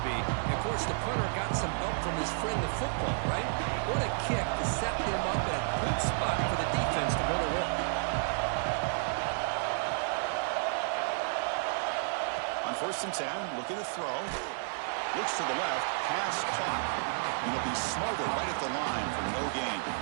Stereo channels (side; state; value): left; silent; 55 dB below the other